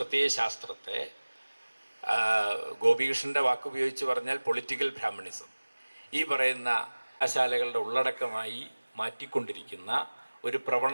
ഗോപികൃഷ്ണൻ്റെ വാക്കുപയോഗിച്ച് പറഞ്ഞാൽ പൊളിറ്റിക്കൽ ബ്രാഹ്മണിസം, ഈ പറയുന്ന കലാശാലകളുടെ ഉള്ളടക്കമായി മാറ്റിക്കൊണ്ടിരിക്കുന്ന ഒരു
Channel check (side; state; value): both; inverted; correlation -1.00